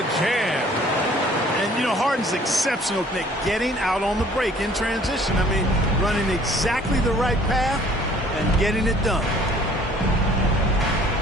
jam. And, you know, Harden's exceptional at getting out on the break in transition. I mean, running exactly the right path and getting it done.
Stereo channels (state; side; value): normal; both; correlation 0.55